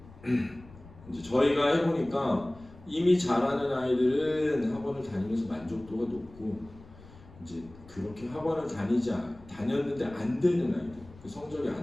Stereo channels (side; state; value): left; noise; rumble, 21 dB below the sound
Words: 이제 저희가 해보니까 이미 잘하는 아이들은 학원을 다니면서 만족도가 높고 이제 그렇게 학원을 다녔는데 안 되는 아이들, 그 성적이